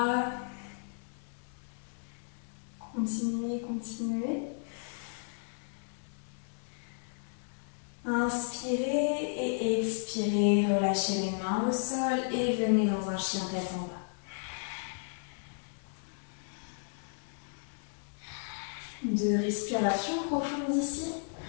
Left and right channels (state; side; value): silent; right; digital silence